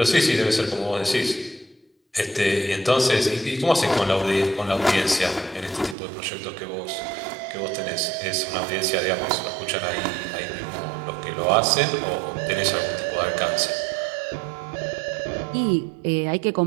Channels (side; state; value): left; drops out; at 6.0 s